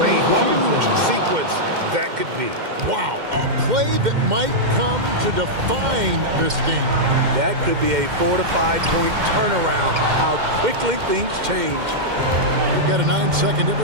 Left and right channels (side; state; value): left; late; 2.1 ms